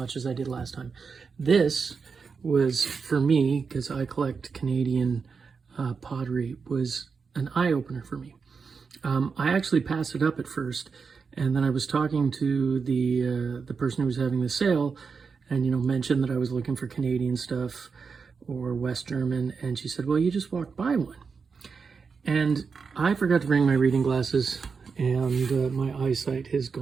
as I did last time. This was, for me, because I collect Canadian pottery, was an eye-opener for me. I actually passed it up at first, and then I was talking to the person who was having the sale, and mentioned that I was looking for Canadian stuff or West German, and she said, well, you just walked by one. And I forgot to bring my reading glasses, and my eyesight has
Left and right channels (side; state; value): left; quieter; 5.3 dB